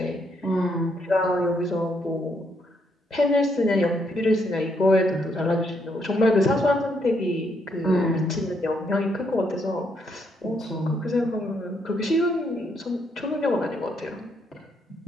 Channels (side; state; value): both; normal; correlation 0.75